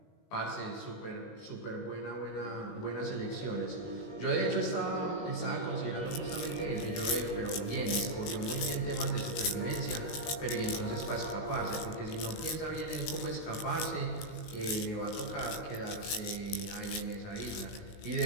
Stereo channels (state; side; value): late; right; 19 ms